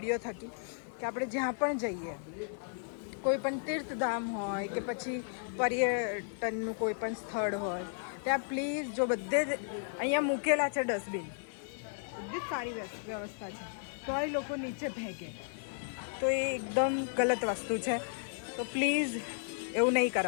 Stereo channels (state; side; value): silent; right; 55 dB below the other